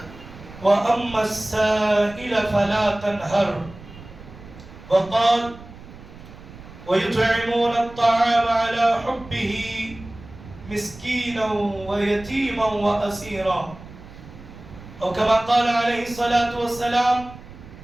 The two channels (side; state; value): right; noise; rumble, 18 dB below the sound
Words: وأما السائل فلا تنهر وقال ويطعمون الطعام على حبه مسكينا ويتيما وأسيرا أو كما قال عليه الصلاة والسلام